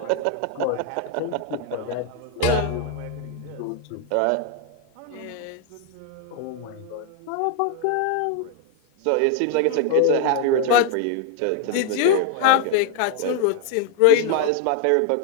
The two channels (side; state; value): both; different; correlation 0.00